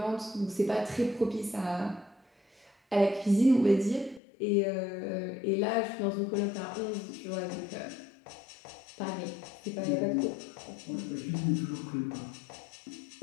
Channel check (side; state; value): right; drops out; at 4.2 s